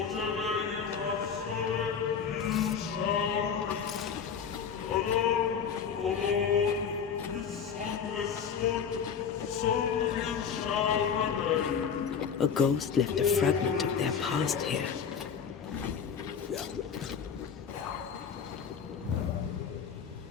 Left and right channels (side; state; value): right; quieter; 6.9 dB